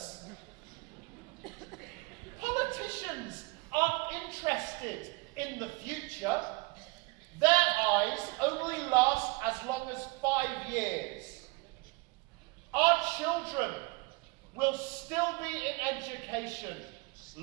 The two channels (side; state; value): left; quieter; 26.2 dB